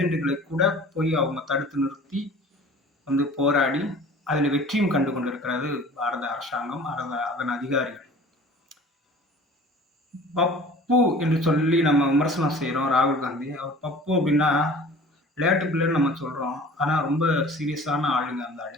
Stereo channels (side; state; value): both; normal; correlation 0.45